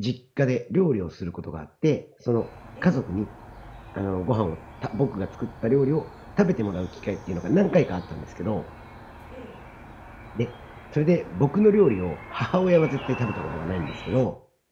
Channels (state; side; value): identical; both; correlation 1.00